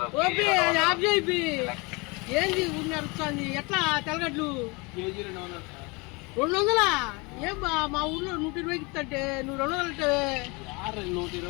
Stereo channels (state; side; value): quieter; right; 27.5 dB